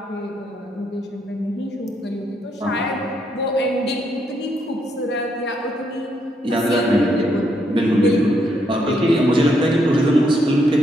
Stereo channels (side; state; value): both; normal; correlation 0.76